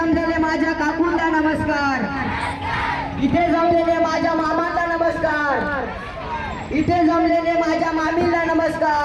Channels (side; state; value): both; identical; correlation 1.00